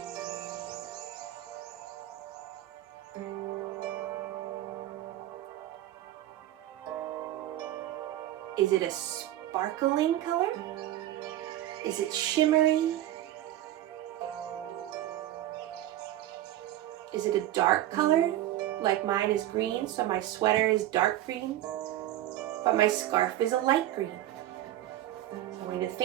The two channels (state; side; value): quieter; left; 13.7 dB